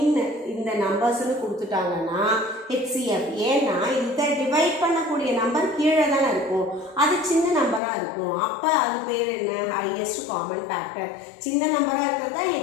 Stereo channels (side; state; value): right; drops out; at 7.8 s